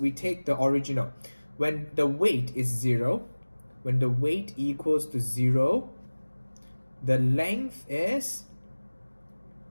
take the original. When the weight is 0, when the weight equals to 0, the length is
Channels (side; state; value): both; inverted; correlation -1.00